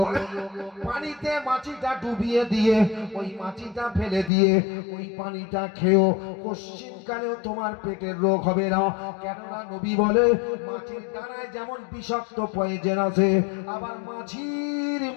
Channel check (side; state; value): right; drops out; at 4.3 s